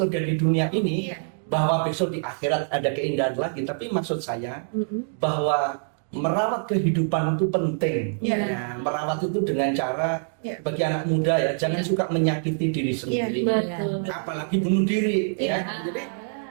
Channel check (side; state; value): left; silent; digital silence